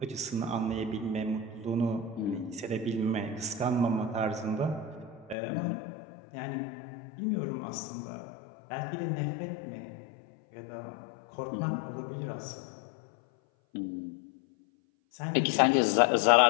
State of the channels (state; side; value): drops out; right; at 5.4 s